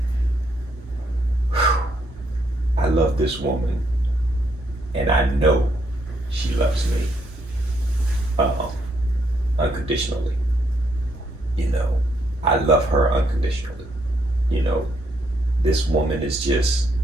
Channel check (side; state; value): both; normal; correlation 0.74